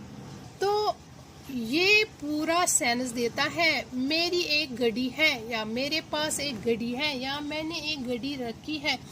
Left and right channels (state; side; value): identical; both; correlation 1.00